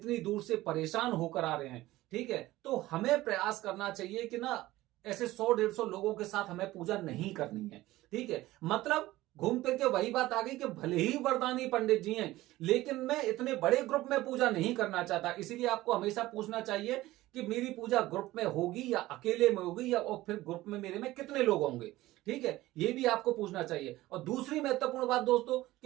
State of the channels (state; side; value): quieter; left; 17.1 dB